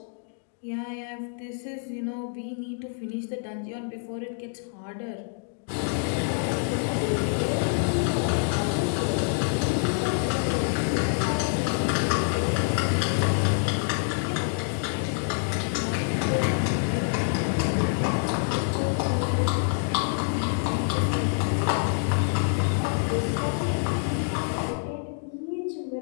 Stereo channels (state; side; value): silent; right; 60 dB below the other